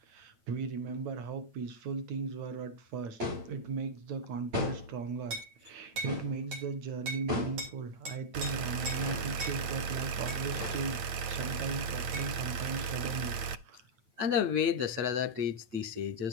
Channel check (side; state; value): left; late; 8.9 ms